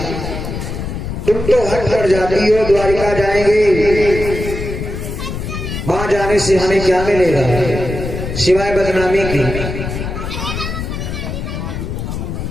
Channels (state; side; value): noise; left; rumble, 6 dB below the sound